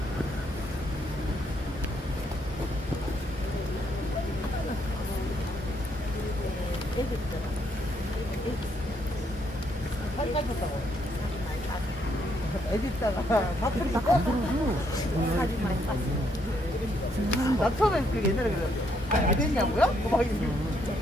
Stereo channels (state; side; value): normal; both; correlation 0.73